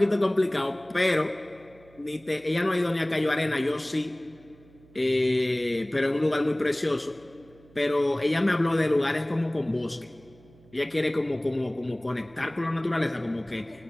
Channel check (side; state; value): right; noise; hum, 26 dB below the sound